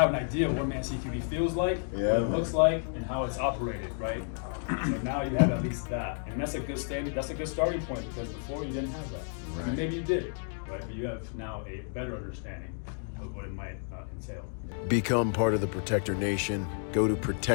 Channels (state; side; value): silent; right; 57 dB below the other